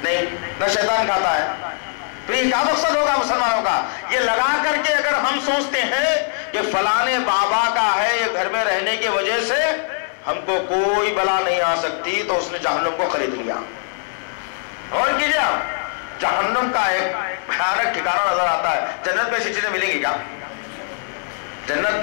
نہیں، نہ شیطان کھاتا ہے. تو یہ کیا مقصد ہوگا مسلمانوں کا؟ یہ لگا کر کے اگر ہم سوچتے ہیں کہ فلانے بابا کا ہے، یہ گھر میں رہنے کی وجہ سے ہم کو کوئی بلا نہیں آ سکتی، تو اس نے جہنم کو خرید لیا. اور کیجیے آپ، جہنم کا ایک بھیانک ٹھکانہ نظر آتا ہے. جنت میں ایسی چیزیں ملیں گی کیا؟ جنت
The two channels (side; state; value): right; silent; 65 dB below the other